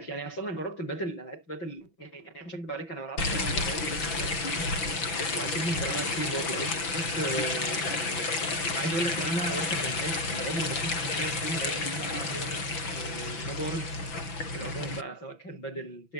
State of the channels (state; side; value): late; right; 6.0 ms